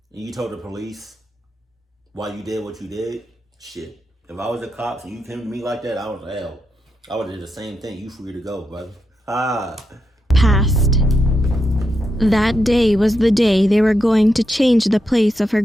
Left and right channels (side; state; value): both; normal; correlation 0.84